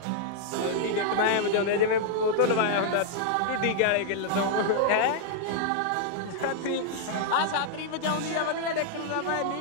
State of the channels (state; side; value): different; both; correlation -0.01